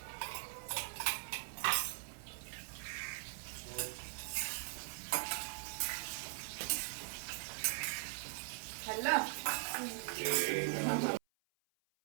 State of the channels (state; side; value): silent; left; 50 dB below the other